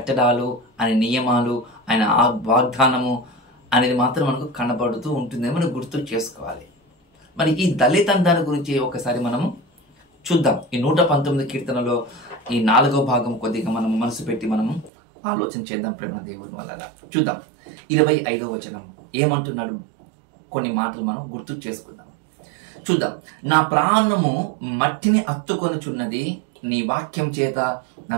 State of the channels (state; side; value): drops out; left; at 14.9 s